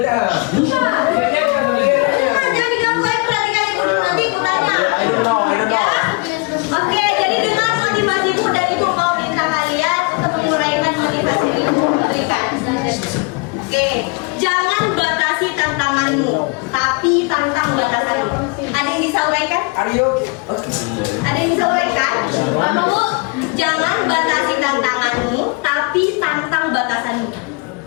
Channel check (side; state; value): right; quieter; 29.6 dB